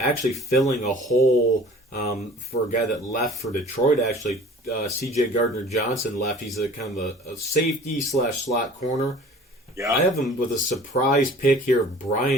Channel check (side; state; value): both; normal; correlation 0.46